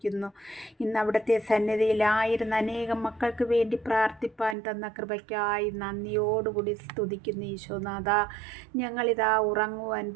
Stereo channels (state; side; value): drops out; left; at 4.5 s